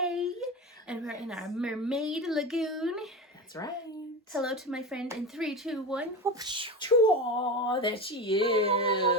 and we're in our Mermaid Lagoon. That's right. Hello to my friend in 3, 2, 1. Chua, there she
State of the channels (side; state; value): both; normal; correlation 0.24